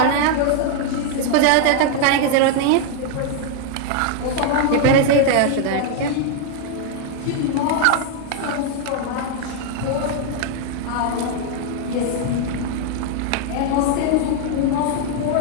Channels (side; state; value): both; different; correlation 0.00